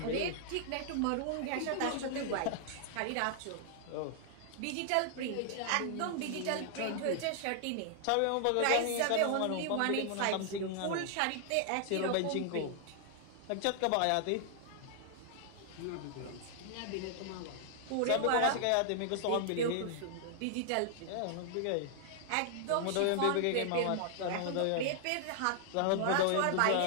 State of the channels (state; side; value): different; both; correlation 0.00